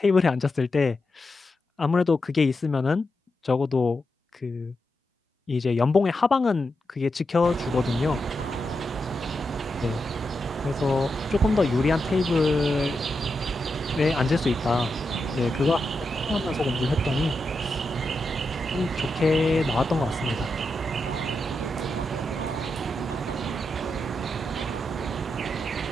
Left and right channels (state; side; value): normal; both; correlation 0.87